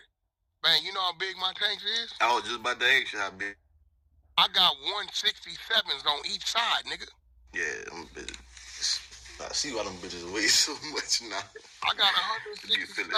Man, you know how big my tanks is? I was just about to ask you how big. I got 167s on each side, nigga. Yeah, them bitches. I see why them bitches weigh so much now. I got 167. You fill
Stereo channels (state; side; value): identical; both; correlation 1.00